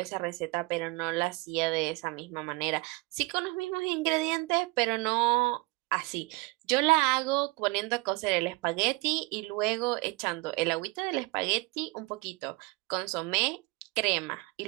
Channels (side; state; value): left; quieter; 24.8 dB